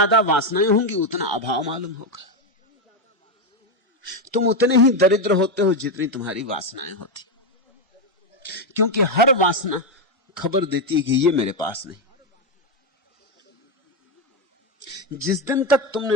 वासनाएं होंगी उतना अभाव मालूम होगा। तुम उतने ही दरिद्र होते हो जितनी तुम्हारी वासनाएं होती, क्योंकि हर वासना खबर देती है कि ये मेरे पास नहीं। जिस दिन तक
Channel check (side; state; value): both; normal; correlation 0.07